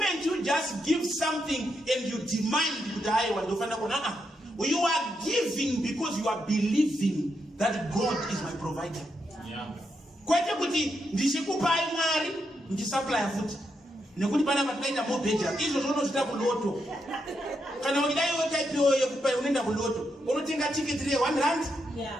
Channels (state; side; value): normal; both; correlation 0.82